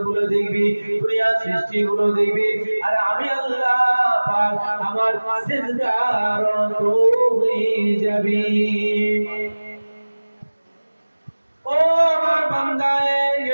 গুলো দেখবি, দুনিয়ার সৃষ্টি গুলো দেখবি, আর আমি আল্লাহ পাক আমার সিজদার হয়ে যাবি। ও আমার বান্দায়ে,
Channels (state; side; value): inverted; both; correlation -1.00